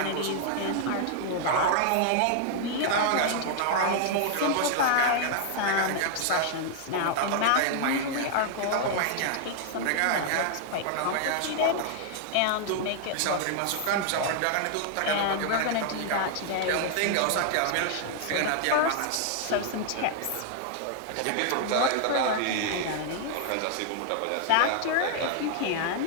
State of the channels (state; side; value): different; both; correlation 0.00